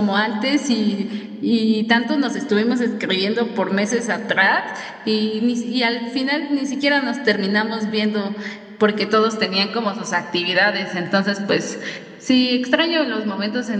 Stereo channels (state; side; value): identical; both; correlation 1.00